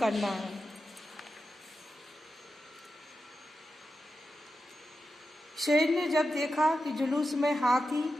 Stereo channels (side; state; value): both; normal; correlation 0.90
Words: है। शेर ने जब देखा कि जुलूस में